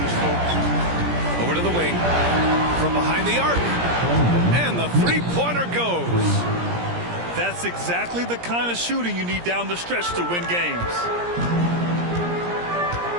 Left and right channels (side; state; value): left; late; 17 ms